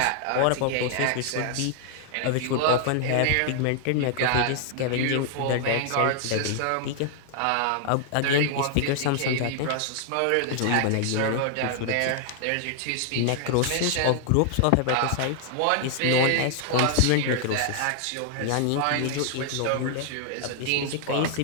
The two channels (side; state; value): both; different; correlation 0.00